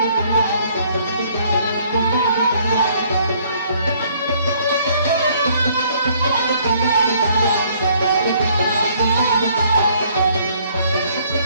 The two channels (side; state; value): both; inverted; correlation -0.63